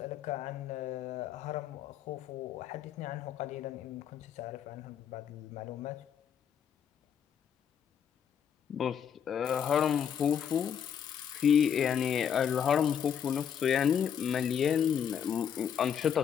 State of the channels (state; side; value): quieter; right; 8.3 dB